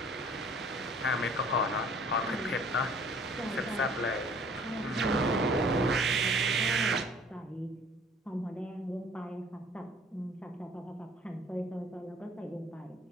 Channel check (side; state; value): both; normal; correlation 0.53